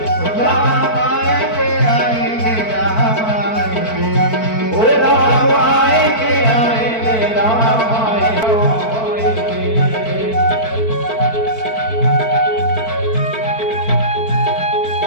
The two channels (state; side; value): late; right; 4.5 ms